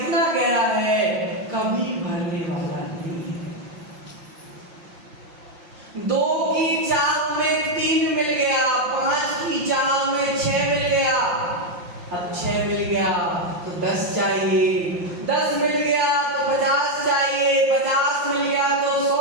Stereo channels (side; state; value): left; late; 5.8 ms